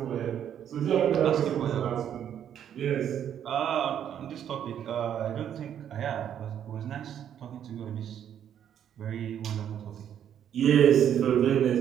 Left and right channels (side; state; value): left; quieter; 9.6 dB